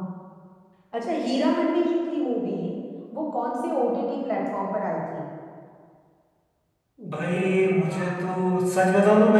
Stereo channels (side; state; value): both; identical; correlation 1.00